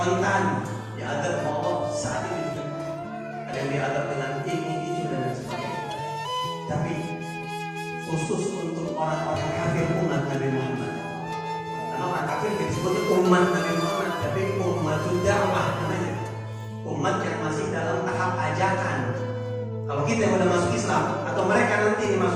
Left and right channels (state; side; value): identical; both; correlation 1.00